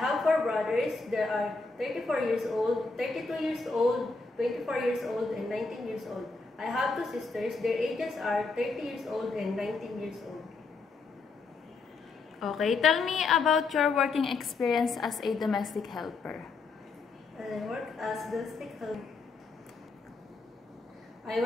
4 brothers. They are 34 years old, 32 years old, 24 years old, and 19 years old. I have 2 sisters. Their ages are 30 years old and 19 years old. Okay, tell me about your working experience as a domestic helper. I work as domestic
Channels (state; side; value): quieter; right; 4.0 dB